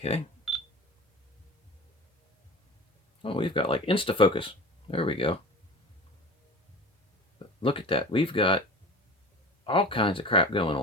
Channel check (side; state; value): both; normal; correlation 0.35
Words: Oh, we've got like insta-focus. There we go. Look at that. We've got all kinds of crap going